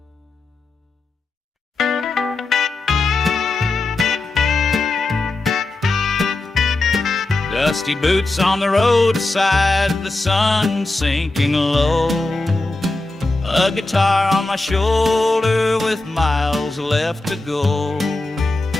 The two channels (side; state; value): right; quieter; 3.1 dB